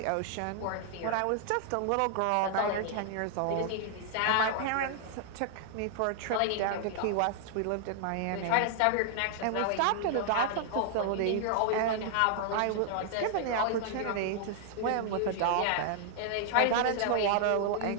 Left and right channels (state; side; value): different; both; correlation -0.01